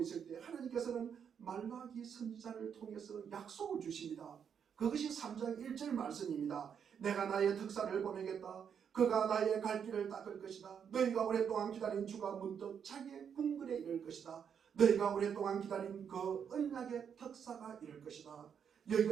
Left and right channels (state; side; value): quieter; left; 7.6 dB